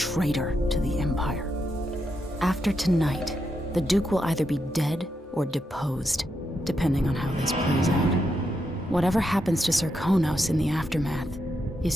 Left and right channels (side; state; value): both; normal; correlation 0.83